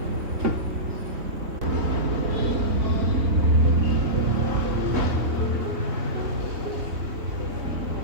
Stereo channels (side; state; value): left; late; 3.7 ms